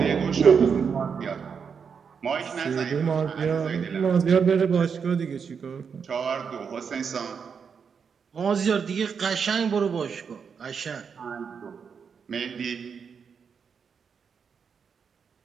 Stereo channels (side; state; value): left; quieter; 6.4 dB